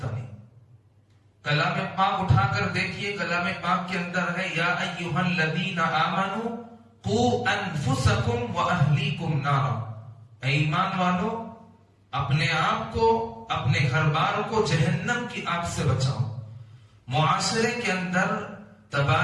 نہیں. کلام پاک اٹھا کر دیکھیے، کلام پاک کے اندر ہے یا ایھا الذین آمنوا قوا انفسکم واہلیکم نارا. اے ایمان والو، اپنے آپ کو، اپنے گھر بار کو جہنم کی آگ سے بچاؤ. معاشرے کے اندر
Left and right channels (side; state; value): both; identical; correlation 1.00